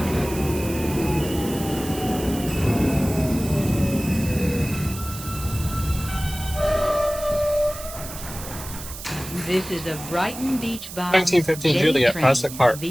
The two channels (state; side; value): noise; right; hiss, 12 dB below the sound